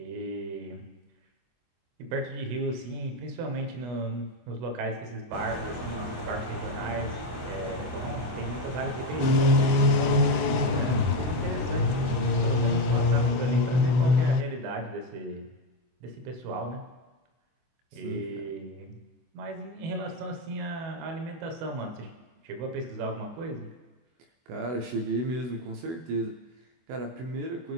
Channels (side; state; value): left; late; 24 ms